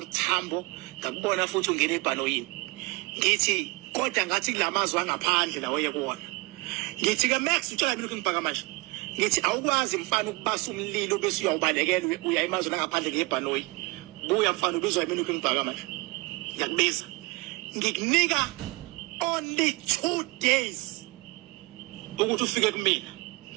Tambo ngakubona futhi ungena ebhanoyini. Ngithi kodwa ngathi kulamazwi angaphandle lawo yekuwona. Ngithi ke Max utshela mina ukungibhaka manje. Ngithi awukwazi mfana ukubasa umlilo bese uyawubalekela uya emazweni angaphandle ngebhanoyi. Buya mfana ubizwa yimina ukungibhaka manje. Ngiyakubiza. Ngikunika only 2 days ukuthi ufike kumina.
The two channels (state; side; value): quieter; left; 24.9 dB